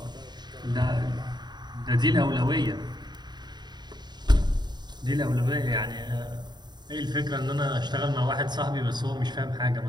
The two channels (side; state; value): left; late; 0.21 ms